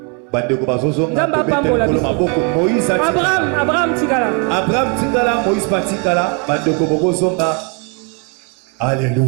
Abraham tikala. Abraham tikala, Moïse patikala, bandeko bozonga.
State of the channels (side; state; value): left; quieter; 29.7 dB